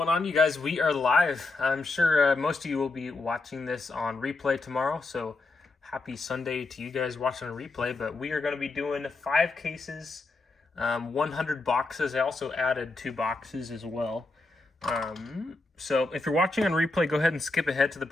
on, you guys? We are live. I'm sure most of you will be watching this on replay tomorrow, so happy Sunday to you guys watching a replay. But we are going to be doing 5 cases, 100 boxes. I also added 2 boxes as well. So if you're watching on replay, go ahead and skip ahead to the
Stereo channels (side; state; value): right; quieter; 3.4 dB